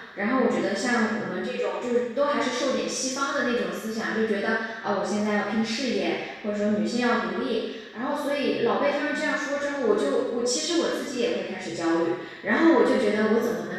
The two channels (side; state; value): both; identical; correlation 1.00